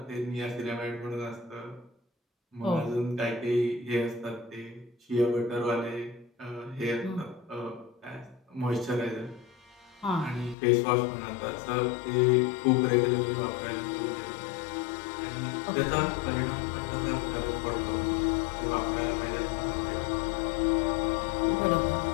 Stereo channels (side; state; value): right; drops out; at 10.6 s